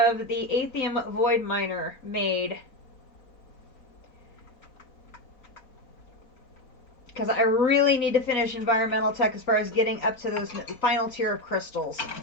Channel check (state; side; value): late; right; 4.1 ms